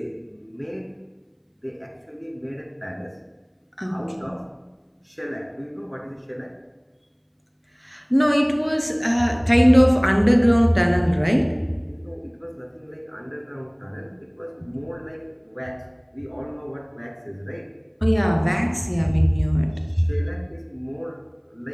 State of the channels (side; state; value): both; identical; correlation 1.00